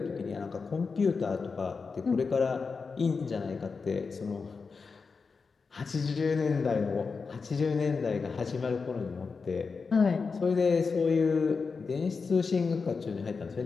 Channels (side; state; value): right; quieter; 4.9 dB